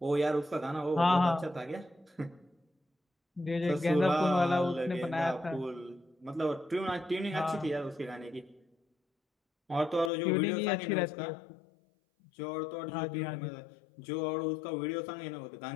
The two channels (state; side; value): drops out; right; at 10.1 s